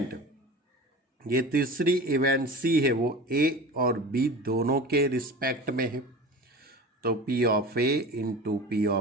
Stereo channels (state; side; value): normal; both; correlation 0.34